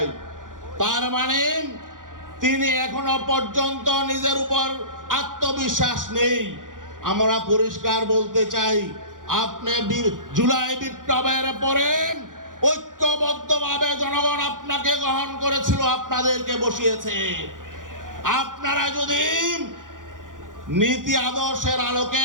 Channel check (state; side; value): late; left; 0.89 ms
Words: তার মানে তিনি এখনো পর্যন্ত নিজের উপর আত্মবিশ্বাস নেই। আমরা পরিষ্কার বলতে চাই, আপনি জুলাই বিপ্লবের পরে ঐক্যবদ্ধভাবে জনগণ আপনাকে গ্রহণ করেছিল, আপনাদেরকে বসিয়েছে। আপনারা যদি নীতি আদর্শের